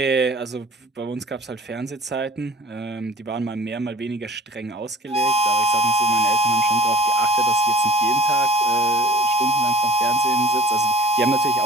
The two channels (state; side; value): normal; both; correlation 0.47